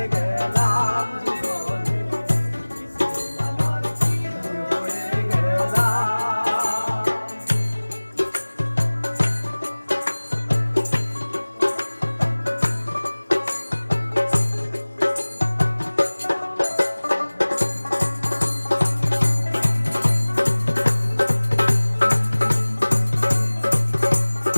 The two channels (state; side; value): inverted; both; correlation -1.00